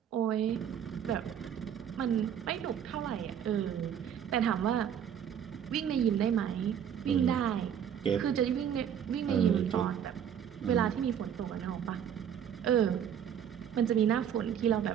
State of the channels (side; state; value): left; quieter; 8.9 dB